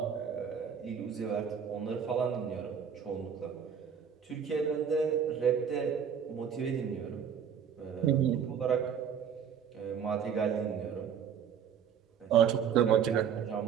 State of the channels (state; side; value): quieter; left; 7.7 dB